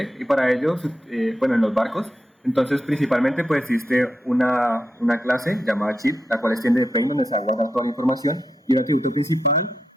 y para ello, bueno, en los barcos, entonces principalmente pues existe una clase llamada chip, la cual extiende de plane, donde se va a guardar toda la información, y el atributo principal,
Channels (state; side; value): normal; both; correlation 0.86